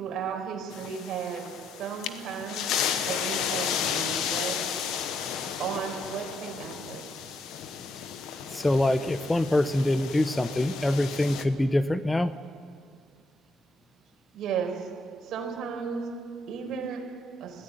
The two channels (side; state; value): both; normal; correlation 0.76